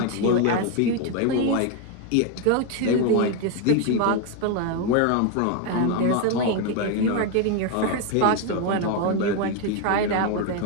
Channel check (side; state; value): both; different; correlation 0.01